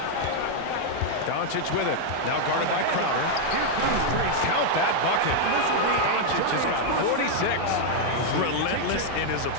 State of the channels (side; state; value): both; different; correlation 0.00